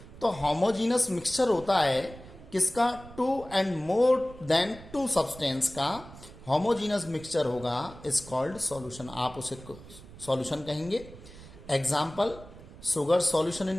तो होमोजीनस मिक्सचर होता है किसका, two and more than two substance का होमोजीनस मिक्सचर होगा, इज कॉल्ड सॉल्यूशन। आप उसे सॉल्यूशन कहेंगे। Example, sugar solution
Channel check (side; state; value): right; noise; rumble, 18 dB below the sound